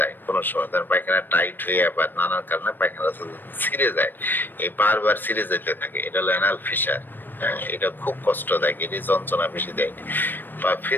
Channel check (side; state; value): right; late; 0.093 ms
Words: কোনো সময়, ধরেন পায়খানা টাইট হয়ে বা নানান কারণে পায়খানার রাস্তা যদি ছিঁড়ে যায়, এই বারবার ছিঁড়ে যেতে থাকে, এটা হলো অ্যানাল ফিশার। হ্যাঁ, এটা খুব কষ্টদায়ক, এটি যন্ত্রণা বেশি দেয়। বা